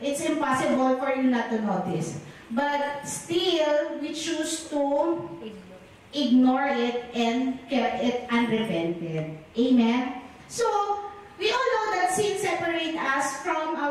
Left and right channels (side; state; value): both; identical; correlation 1.00